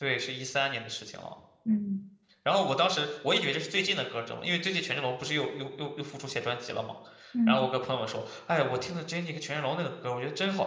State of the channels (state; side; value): identical; both; correlation 1.00